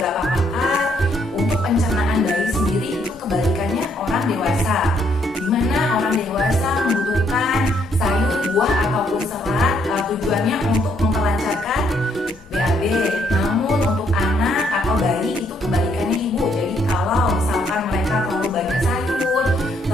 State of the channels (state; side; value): normal; both; correlation 0.71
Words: pakar, untuk pencernaan bayi sendiri itu kebalikannya orang dewasa, dimana orang dewasa membutuhkan sayur, buah ataupun serat tujuannya untuk memperlancarkan BAB. Namun untuk anak atau bayi itu kebalikannya ibu. Jadi kalau misalkan mereka terlalu banyak sayur,